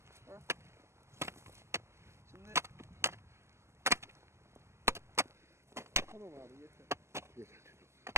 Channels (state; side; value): late; left; 0.13 ms